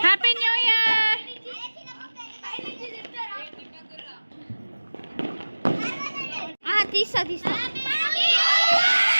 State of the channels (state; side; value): inverted; both; correlation -1.00